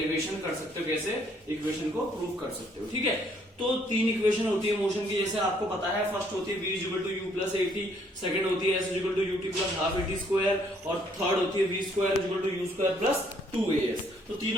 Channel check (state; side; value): normal; both; correlation 0.66